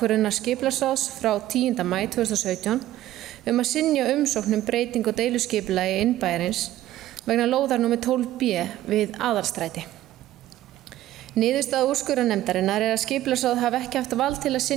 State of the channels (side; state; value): left; quieter; 14.2 dB